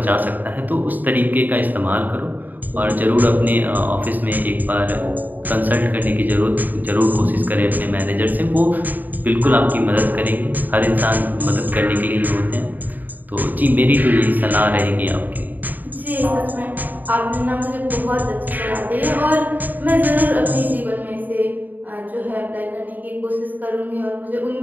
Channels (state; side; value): late; left; 0.085 ms